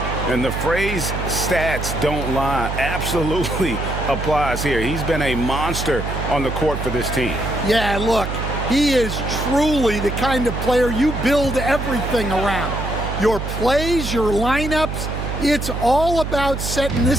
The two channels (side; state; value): right; noise; hum, 5 dB below the sound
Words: And the phrase stats don't lie absolutely applies here. He's been a monster on the court for this team. Yeah, look, he is truly the kind of player you build everything around. Your plays, your lineups, it's all about setting